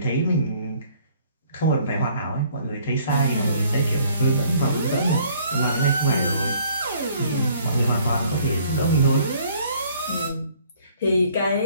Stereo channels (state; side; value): inverted; both; correlation -0.59